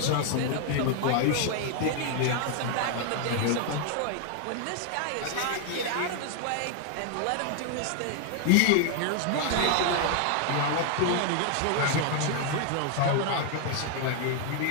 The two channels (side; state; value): both; different; correlation 0.00